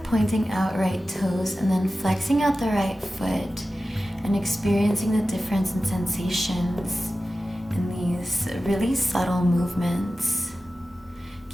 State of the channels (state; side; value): normal; both; correlation 0.94